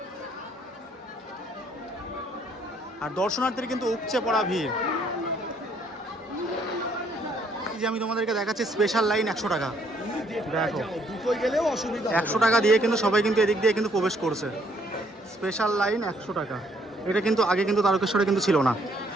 আর দর্শনার্থীর কিন্তু উপচে পড়া ভিড়। এই যে আমি তোমাদেরকে দেখাচ্ছি স্পেশাল লাইন 100 টাকা, দেখো 100 টাকা দিয়ে কিন্তু সবাই কিন্তু এদিক দিয়ে কিন্তু প্রবেশ করছে। স্পেশাল লাইন 100 টাকা, এটা কিন্তু আগে কিন্তু তারকেশ্বরে কিন্তু ছিল না।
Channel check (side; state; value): both; normal; correlation 0.67